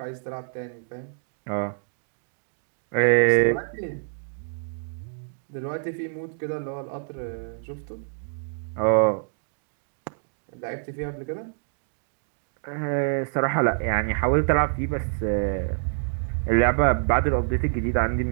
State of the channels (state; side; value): silent; left; digital silence